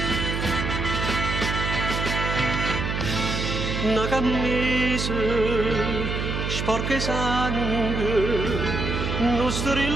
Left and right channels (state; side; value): noise; right; hum, 2 dB below the sound